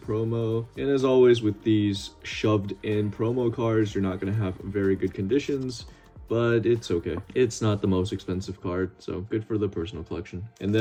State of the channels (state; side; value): identical; both; correlation 1.00